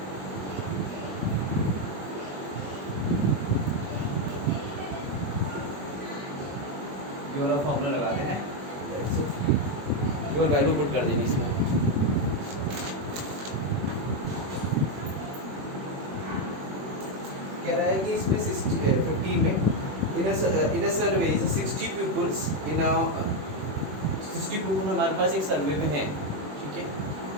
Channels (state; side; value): late; left; 21 ms